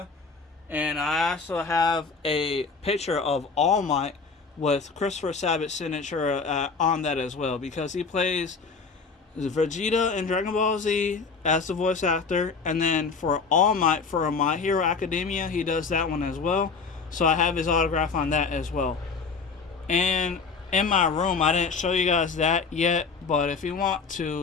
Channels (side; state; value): right; quieter; 4.9 dB